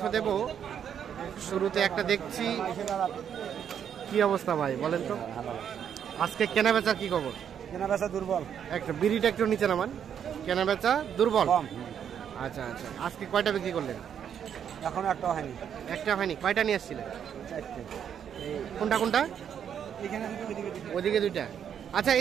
দেব। শুরুতে একটা দেখছি, কি অবস্থা ভাই বলেন তো? আজকে কেনা বেচার কি খবর? কেনা বেচা দুর্বল, একটা বিড়িটা একটু নিচে নামান। কেনা বেচা দুর্বল। আচ্ছা আচ্ছা, আজকে কয়টা বিক্রি করলেন? এখনো একটা হয়নি। একটা হয়নি? কয়টা নিয়ে আসছিলেন? কোনটা কোনটা? ওদিকে 2টা। আচ্ছা,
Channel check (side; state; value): left; quieter; 8.5 dB